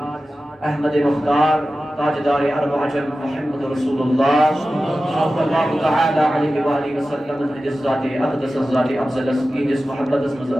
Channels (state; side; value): normal; both; correlation 0.94